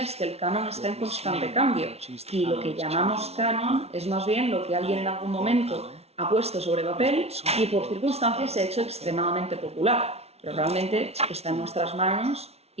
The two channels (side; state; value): left; late; 0.30 ms